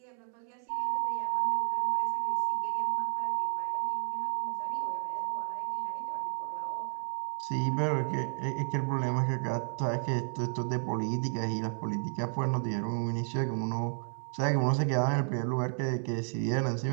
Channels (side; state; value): left; silent; digital silence